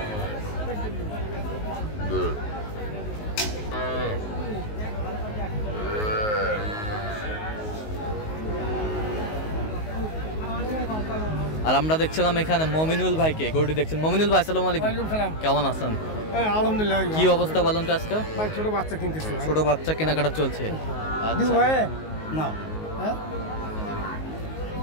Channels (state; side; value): late; right; 19 ms